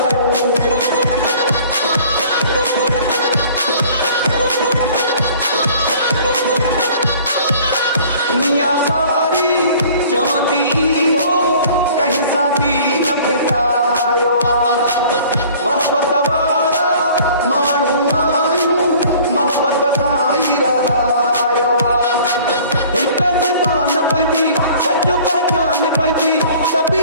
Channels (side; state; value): both; inverted; correlation -0.50